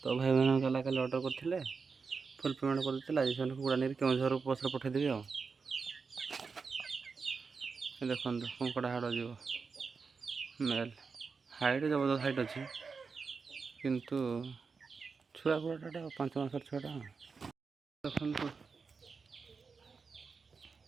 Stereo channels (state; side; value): quieter; left; 5.0 dB